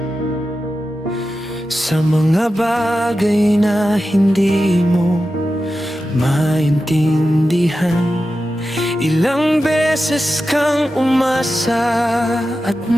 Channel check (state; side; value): normal; both; correlation 0.92